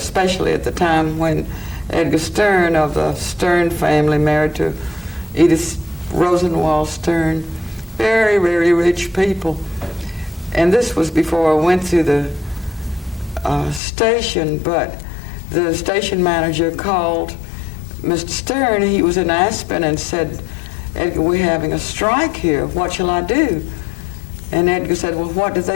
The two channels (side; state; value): right; drops out; at 13.8 s